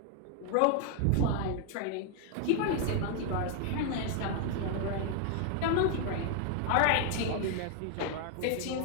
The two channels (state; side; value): different; both; correlation 0.00